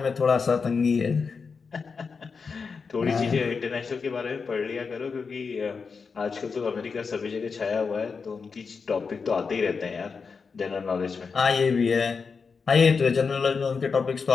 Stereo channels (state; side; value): quieter; right; 5.2 dB